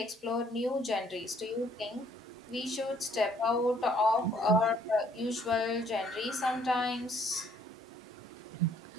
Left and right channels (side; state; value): both; normal; correlation 0.63